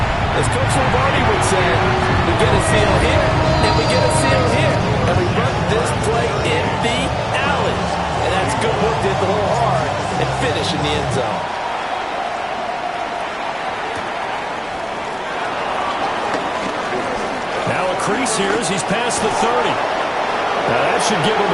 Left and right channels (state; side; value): identical; both; correlation 1.00